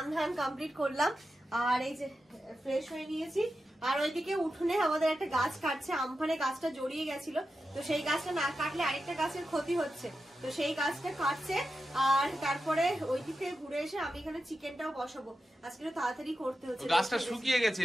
ধান কমপ্লিট করলাম আর এই যে ফ্রেশ হয়ে নিয়েছি। আর ওইদিকে উঠোনে আমাদের একটা গাছ কাটছে, আমফানে গাছটা জড়িয়ে গেছিল, তো সেই গাছটা না কাটলে আরেকটা গাছের ক্ষতি হচ্ছে, তো সেই গাছটা কাটছে। আর তারপরে ওই দিক থেকে ঘুরে এসে আমি এখানে চিকেনটাও বসাবো। আজকে তাড়াতাড়ি করতে হচ্ছে, গাছটা শুকিয়ে গেছে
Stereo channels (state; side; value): normal; both; correlation 0.90